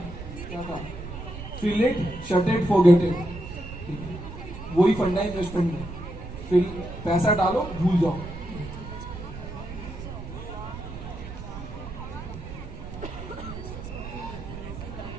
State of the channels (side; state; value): right; noise; rumble, 10 dB below the sound